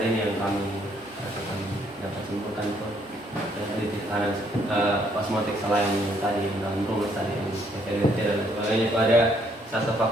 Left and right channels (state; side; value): normal; both; correlation 0.68